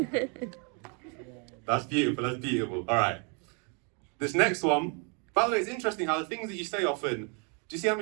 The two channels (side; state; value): left; quieter; 36.7 dB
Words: That's beautiful. All right. This next one, by the way, it's interesting how the things that you say often, do you see how